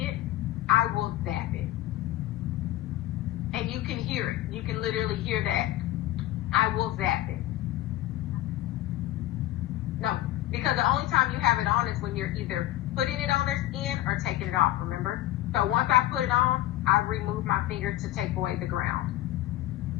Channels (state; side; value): quieter; right; 15.0 dB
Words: it, I will zap it. And you can hear it. You can literally hear that. I will zap it. No, because the only time you have it on is when you're either putting it on their skin or taking it off, remember? So once I put it on, I remove my finger to take away the ground.